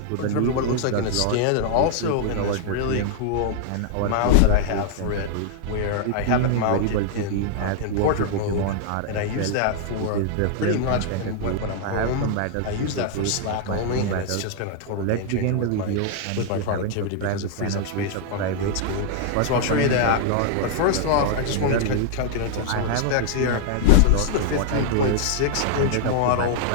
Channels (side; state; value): both; different; correlation 0.00